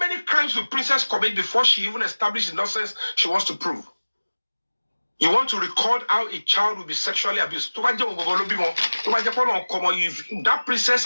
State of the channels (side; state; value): both; inverted; correlation -1.00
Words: crimes will Princess commit before she even established the nonsense she wants to prove? You want to record how a child will be sexually abused. If that princess